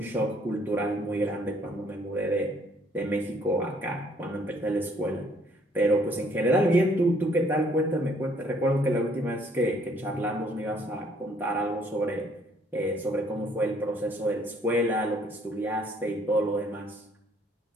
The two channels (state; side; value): normal; both; correlation 0.63